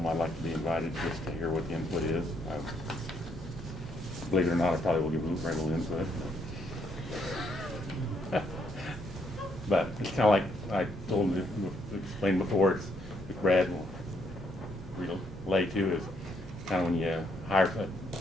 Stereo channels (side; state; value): both; normal; correlation 0.73